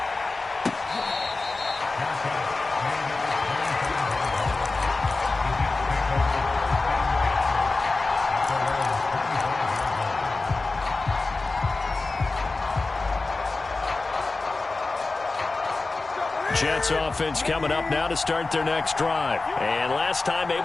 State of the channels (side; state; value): right; quieter; 3.5 dB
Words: Jets offense coming up now to start their next drive. And last time